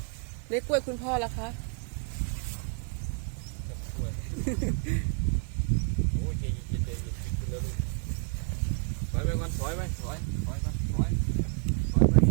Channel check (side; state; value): left; quieter; 38.6 dB